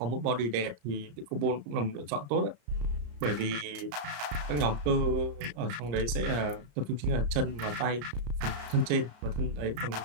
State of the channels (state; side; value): late; left; 34 ms